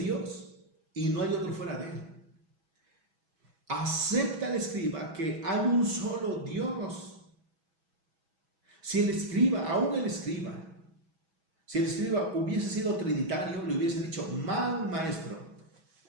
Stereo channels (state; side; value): late; left; 6.1 ms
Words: y no hay otro fuera de él. Acepta el escriba que hay un solo Dios. Si el escriba, aún el escriba, si el escriba hubiese sido trinitario, le hubiese dicho, mal maestro,